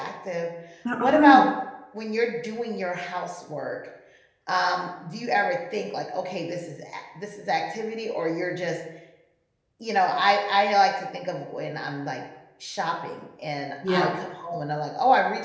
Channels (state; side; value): identical; both; correlation 1.00